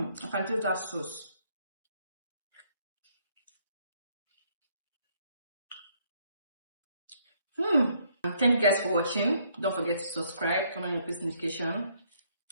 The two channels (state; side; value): inverted; both; correlation -0.68